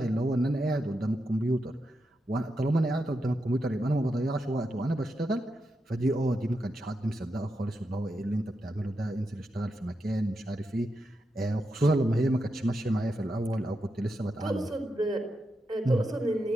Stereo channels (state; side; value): normal; both; correlation 0.86